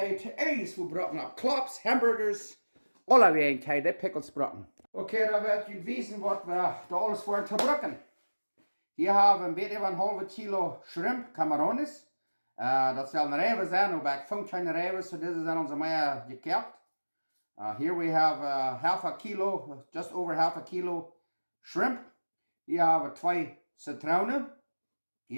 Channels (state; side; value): inverted; both; correlation -1.00